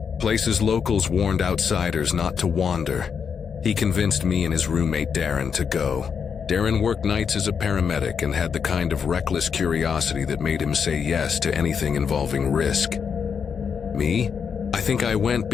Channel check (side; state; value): right; quieter; 6.6 dB